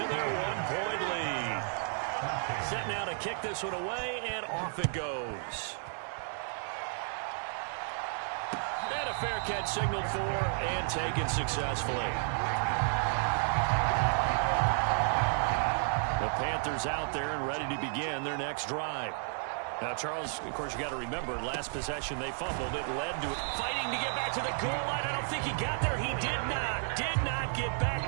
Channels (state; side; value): silent; left; 56 dB below the other